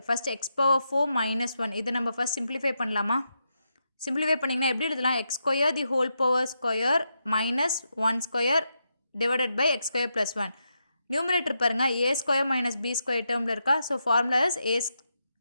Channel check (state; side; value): inverted; both; correlation -0.84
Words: First X power 4 minus 1 இதை நம்ம ஃபஸ்ட் சிம்பிளிஃபை பண்ணலாமா? சிம்பிளிஃபை பண்ணிங்கன்னா எப்படி எழுதலாம், x square the whole power square minus 1 square divided by x square plus 1. Numerator பாருங்கள், a square minus b square டேர்மில் இருக்கா. So formula is